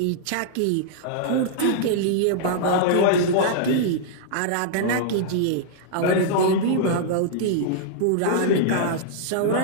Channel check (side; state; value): both; different; correlation -0.01